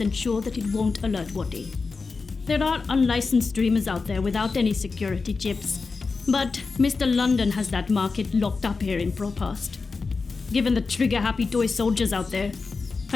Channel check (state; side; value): quieter; right; 4.4 dB